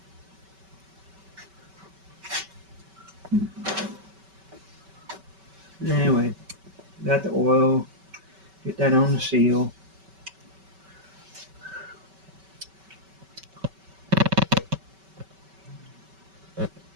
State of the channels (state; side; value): late; left; 5.2 ms